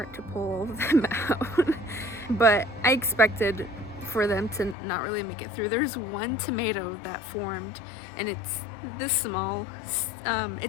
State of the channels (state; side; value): drops out; right; at 4.8 s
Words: to pull all of them out. But I expected for them to not really make it through. There's one tomato that formed, and it's this small.